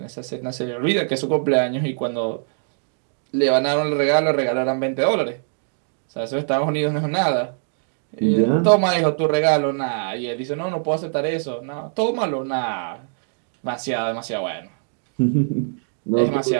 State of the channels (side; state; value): left; silent; digital silence